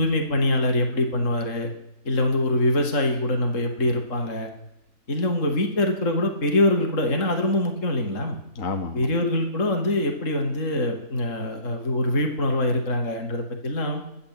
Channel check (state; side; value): late; right; 3.7 ms